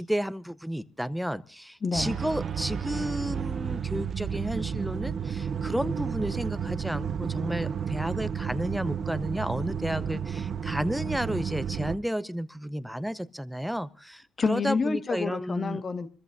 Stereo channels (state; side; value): normal; both; correlation 0.87